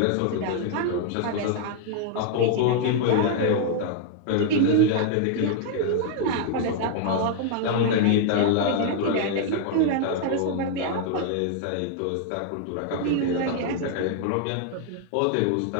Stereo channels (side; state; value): both; different; correlation 0.00